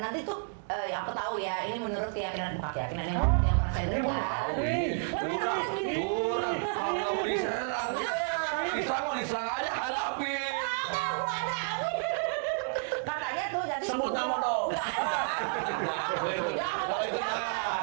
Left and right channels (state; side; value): silent; left; 57 dB below the other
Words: nanti tuh yang aku tahu ya, ini menurut keyakinan yang pernah saya dengar. Kurang. Kalau nggak mau diserang aja hadapi. Katanya tuh jadi Sebut nama dong. Kalau itu